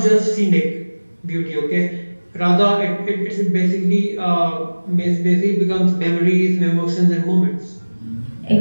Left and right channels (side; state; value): both; inverted; correlation -1.00